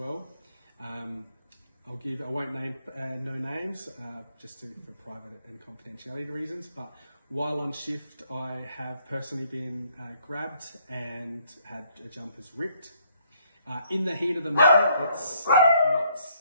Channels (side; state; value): both; inverted; correlation -0.67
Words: I won't name no names, just for private and confidentiality reasons, but while on shift I have personally been grabbed and had jumpers ripped. In the heat of the moment, it's